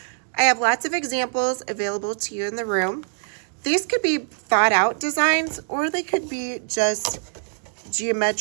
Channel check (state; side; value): silent; left; digital silence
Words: I have lots of examples available to you in the room. These could be thought out designs, or they could be just